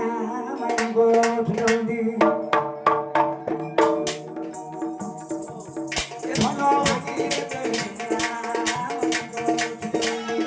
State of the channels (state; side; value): identical; both; correlation 1.00